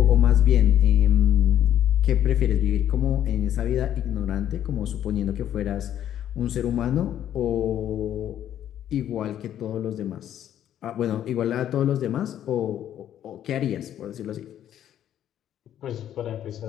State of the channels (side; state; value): right; quieter; 10.9 dB